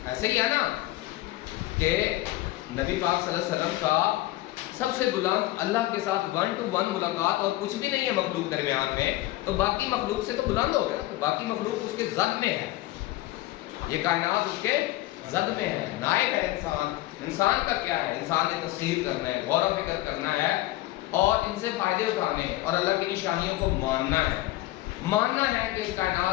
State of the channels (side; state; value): right; quieter; 17.1 dB